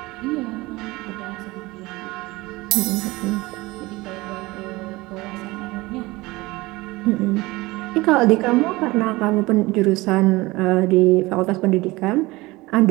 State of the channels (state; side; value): quieter; left; 21.2 dB